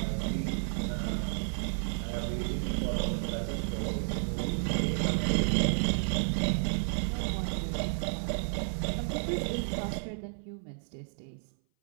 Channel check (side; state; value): left; silent; 57 dB below the other